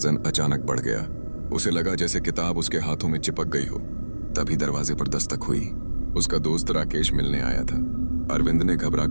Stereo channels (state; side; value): inverted; both; correlation -1.00